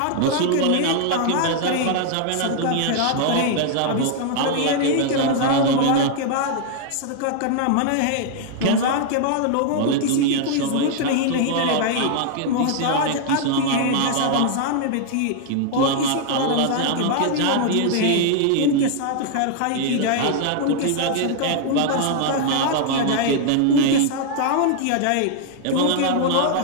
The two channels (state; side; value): different; both; correlation 0.00